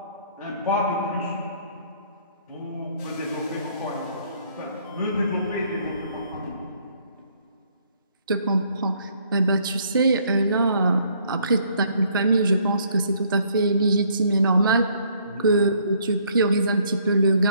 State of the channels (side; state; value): both; inverted; correlation -0.65